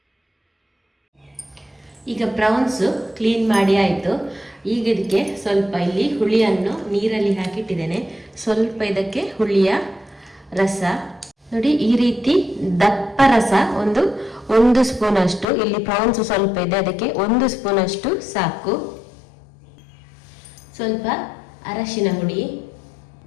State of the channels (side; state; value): right; drops out; at 15.5 s